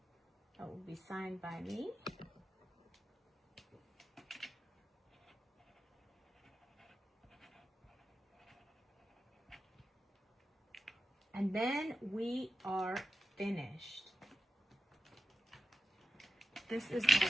it will be signed by me. And then we are finished. This is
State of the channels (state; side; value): normal; both; correlation 0.93